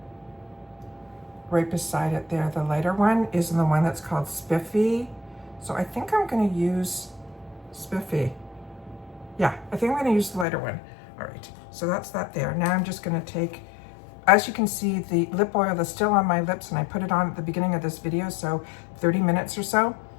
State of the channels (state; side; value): drops out; right; at 10.5 s